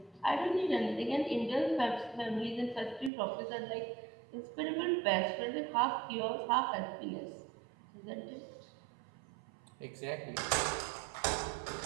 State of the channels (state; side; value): drops out; left; at 3.1 s